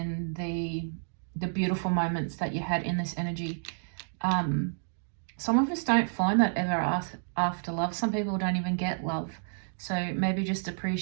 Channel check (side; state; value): left; silent; digital silence